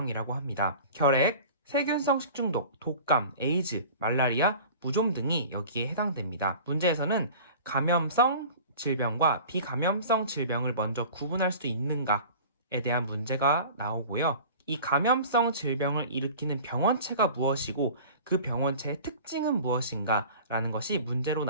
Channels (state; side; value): inverted; both; correlation -0.40